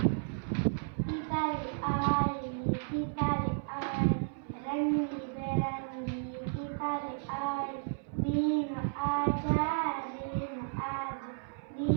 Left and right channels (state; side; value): silent; left; 56 dB below the other